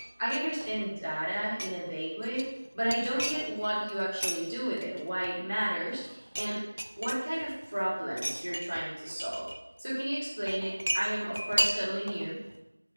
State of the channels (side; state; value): both; inverted; correlation -1.00